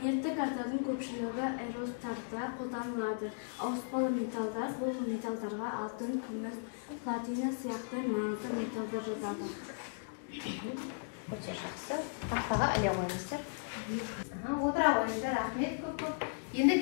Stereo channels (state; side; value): silent; right; digital silence